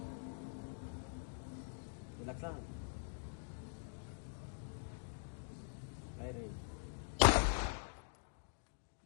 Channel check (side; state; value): right; silent; digital silence